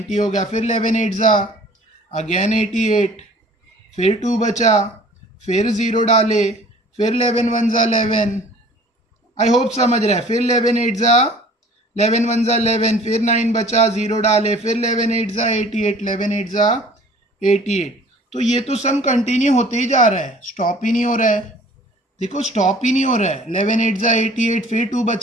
हो गया, फिर 11 8 जा अगेन 88, फिर 2 बचा, फिर 0 डाले, फिर 11 1 जा 11, आई होप समझ रहे हैं, फिर 11 8 जा 11 1 जा 11, फिर 9 बचा, 0 डाले, फिर 11 8 जा 88, 11 8 जा 88। तो ये तो सम कंटिन्यू होते ही जा रहा है, स्टॉप ही नहीं हो रहा है। देखो स्टॉप ही नहीं हो रहा है। 11 8 जा 88, फिर 2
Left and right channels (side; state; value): both; normal; correlation 0.50